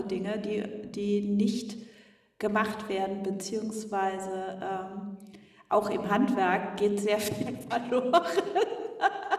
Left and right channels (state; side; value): identical; both; correlation 1.00